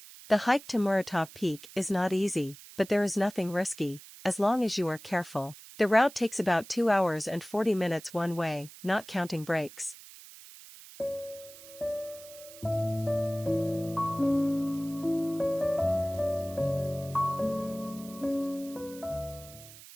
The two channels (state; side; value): noise; right; hiss, 18 dB below the sound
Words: The hike to Muratov Peak is not easy, but there is nothing risky, as long as you are careful. The route takes about 2 hours and 40 minutes one way, not counting breaks.